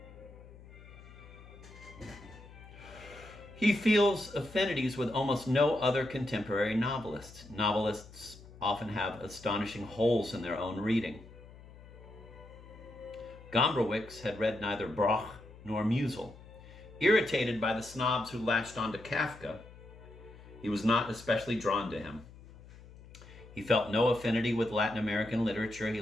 He feels affinities with almost no other contemporary novelists. Novelists often have astonishing holes in their own reading. Gombrowicz had read neither Broch nor Musel. Irritated by the snobs who latched onto Kafka, he was not especially drawn to him. He felt no affinity with Latin American literature. He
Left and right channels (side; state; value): left; noise; hum, 19 dB below the sound